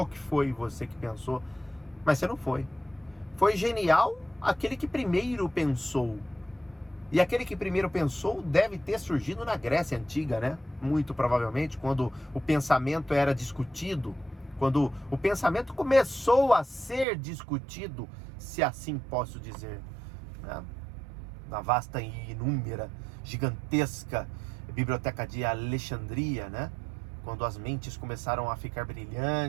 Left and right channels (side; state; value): left; drops out; at 17.1 s